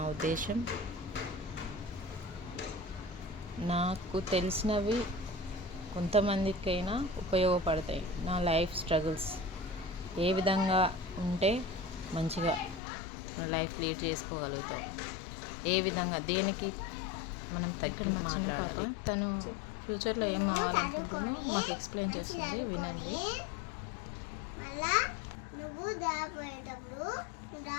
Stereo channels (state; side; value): drops out; right; at 12.8 s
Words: ఉద్దేశం, నాకు తెలిసినవి కొంతమందికైనా ఉపయోగపడతాయి. నా లైఫ్ స్ట్రగుల్స్ ఏ విధంగా ఉంటే మంచిగా లైఫ్ లీడ్ చేసుకోగలుగుతాం, ఏ విధంగా దేనికి మనం ఇక్కడ మా చిన్న పాప తను ఫ్యూచర్లో ఏం అవ్వాలనుకుంటుందో మాకు ఎక్స్ప్లెయిన్ చేస్తుంది, వినండి.